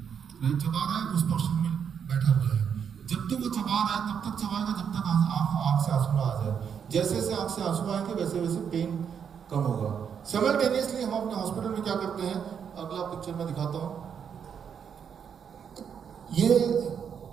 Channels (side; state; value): left; quieter; 7.5 dB